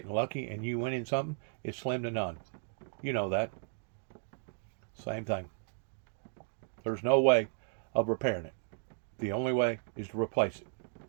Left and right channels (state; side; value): silent; left; digital silence